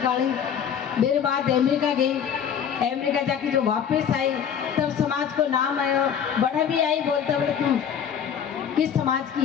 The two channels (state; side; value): quieter; right; 8.1 dB